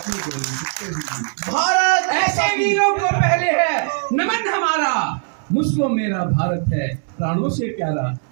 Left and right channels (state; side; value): silent; left; 66 dB below the other